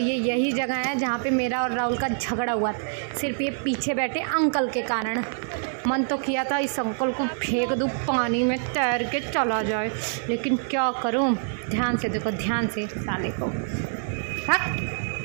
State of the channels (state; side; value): silent; left; 61 dB below the other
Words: यही जगह है जहाँ पे मेरा और राहुल का झगड़ा हुआ था, सिर्फ ये पीछे बैठे अंकल के कारण। मन तो किया था इस अंकल को फेंक दूँ पानी में, तैर के चला जाए, लेकिन क्या करूँ। ध्यान से देखो, ध्यान से साले को। हाँ